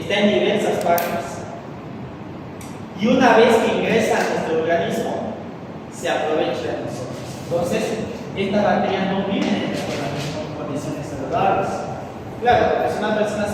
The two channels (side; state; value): both; identical; correlation 1.00